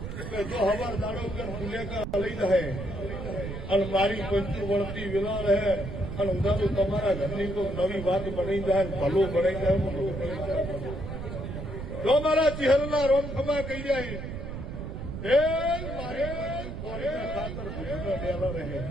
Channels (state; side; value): noise; right; rumble, 7 dB below the sound